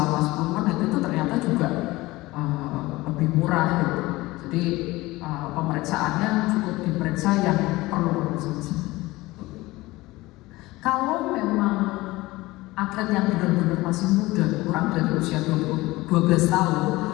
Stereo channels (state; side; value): quieter; right; 19.8 dB